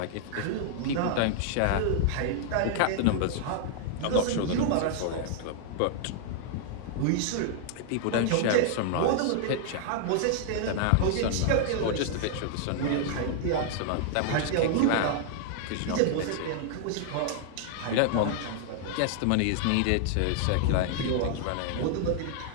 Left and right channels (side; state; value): both; different; correlation 0.00